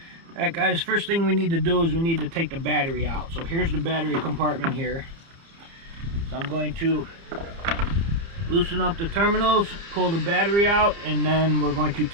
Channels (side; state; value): left; late; 30 ms